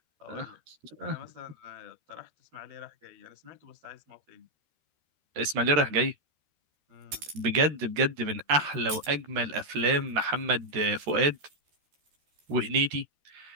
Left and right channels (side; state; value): left; late; 13 ms